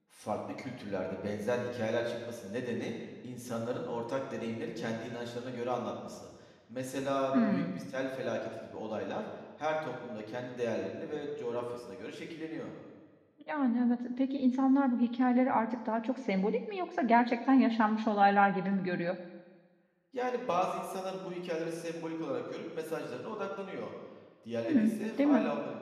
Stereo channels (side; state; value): both; identical; correlation 1.00